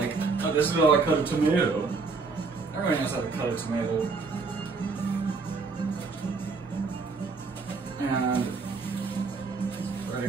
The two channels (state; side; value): quieter; left; 4.4 dB